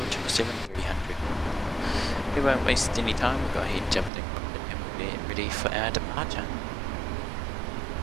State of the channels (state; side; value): drops out; left; at 4.1 s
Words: 777-300. We won't waste any time, we'll go ahead and jump in the cockpit and we'll get ready for our departure.